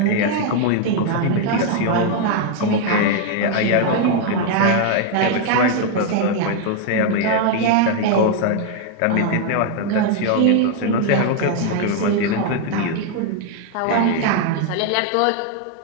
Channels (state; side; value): different; both; correlation 0.00